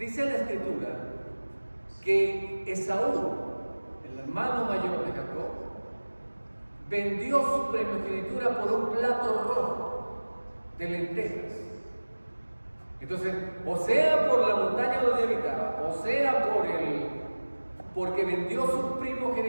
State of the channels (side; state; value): both; inverted; correlation -1.00